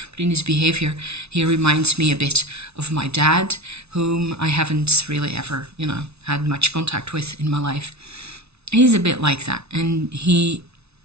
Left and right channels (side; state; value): left; late; 0.80 ms